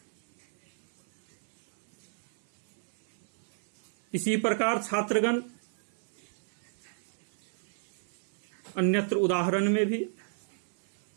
इसी प्रकार छात्रगण अन्यत्र उदाहरण में भी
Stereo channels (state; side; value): silent; left; 56 dB below the other